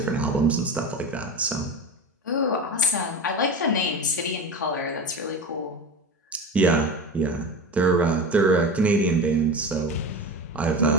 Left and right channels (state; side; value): normal; both; correlation 0.28